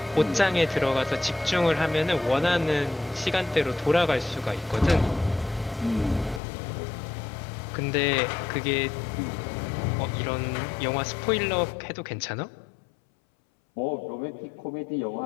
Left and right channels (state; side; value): drops out; right; at 6.4 s